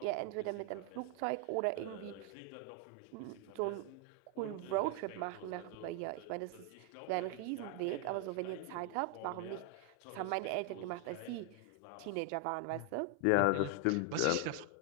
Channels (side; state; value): both; different; correlation 0.01